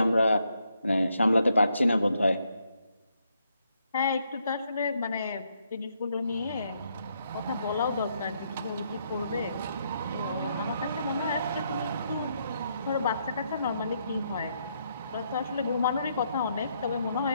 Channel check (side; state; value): both; inverted; correlation -0.76